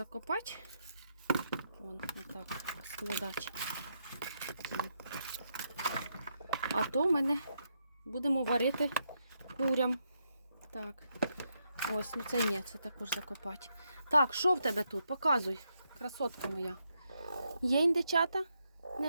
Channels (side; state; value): both; inverted; correlation -0.81